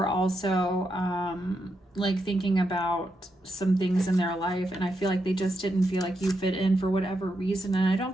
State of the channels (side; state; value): both; normal; correlation 0.83